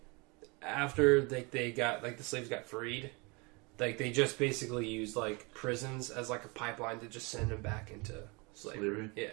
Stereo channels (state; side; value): quieter; left; 28.6 dB